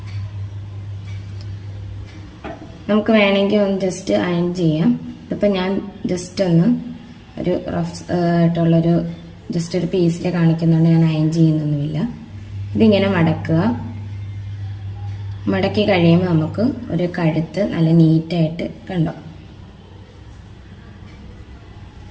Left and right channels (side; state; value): both; identical; correlation 1.00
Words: നമുക്ക് വേണമെങ്കിൽ ഒന്ന് ജസ്റ്റ് അയൺ ചെയ്യാം. ഇതിപ്പോൾ ഞാൻ ജസ്റ്റ് ഒന്ന് ഒരു റഫ് ആയിട്ടുള്ളൊരു ജസ്റ്റ് ഒരു പീസിൽ കാണിക്കുന്നുണ്ട്, ഞാൻ അയൺ ചെയ്യുന്നൊന്നുമില്ല. ഇതിങ്ങനെ മടക്കുക. മടക്കി കഴിയുമ്പോൾ നമുക്ക് ഒരു കഴുത്ത് നല്ല നീറ്റായിട്ട് കണ്ടോ,